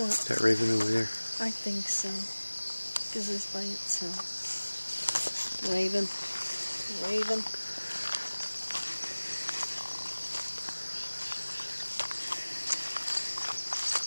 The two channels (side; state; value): both; inverted; correlation -1.00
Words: That raven over there? I think so. Because it's by itself. Raven. Raven.